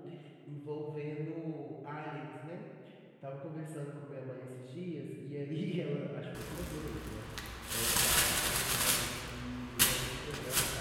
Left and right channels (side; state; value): both; identical; correlation 1.00